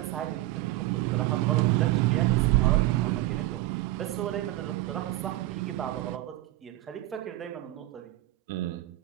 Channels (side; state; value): left; quieter; 16.9 dB